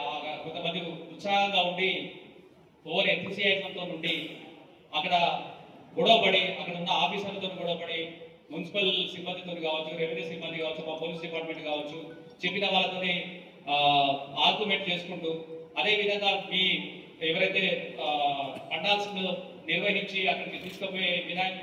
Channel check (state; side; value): identical; both; correlation 1.00